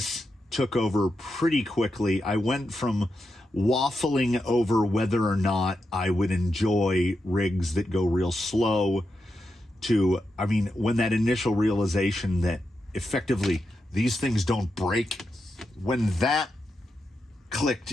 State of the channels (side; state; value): both; normal; correlation 0.87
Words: took over pretty quickly. I went from waffling over whether or not I would enjoy rigs that go real slow to, when that initial realization that effectively these things don't break, when that clicked